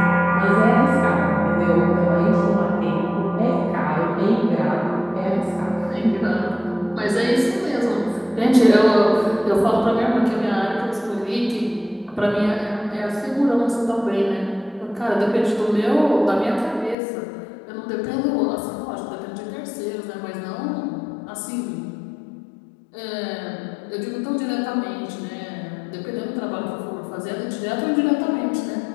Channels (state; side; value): drops out; right; at 16.9 s